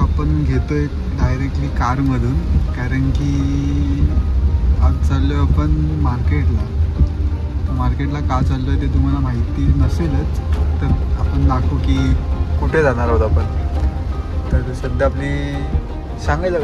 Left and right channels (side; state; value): both; identical; correlation 1.00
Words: आपण घेतोय डायरेक्टली कारमधून, कारण की आज चाललो आहे आपण मार्केटला. मार्केटला का चाललो आहे ते तुम्हाला माहिती नसेलच, तर आपण दाखवू की कुठे जाणार आहोत आपण. तर सध्या आपली सांगायचं